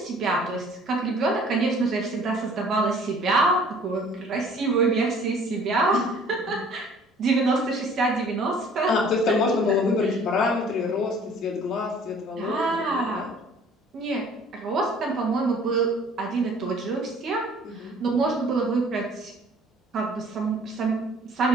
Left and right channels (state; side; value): normal; both; correlation 0.52